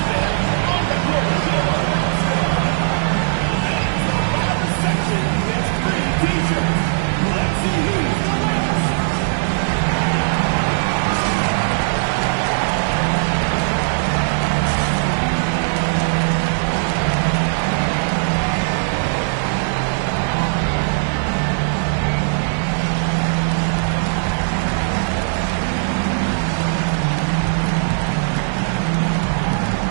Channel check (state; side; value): silent; left; digital silence